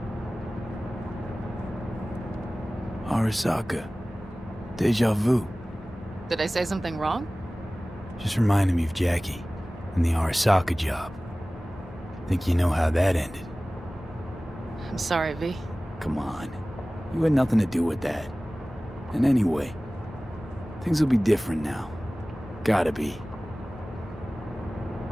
Arasaka. Deja vu. Did I say something wrong? Just reminded me of Jackie and the Arasaka job. Think you know how that ended? I'm sorry, V. Come on. You had nothing to do with that. And anyway, things will be different now. Gotta be.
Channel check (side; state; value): both; normal; correlation 0.97